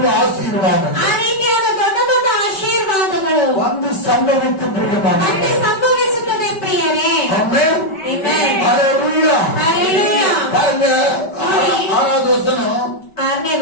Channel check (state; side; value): late; right; 5.2 ms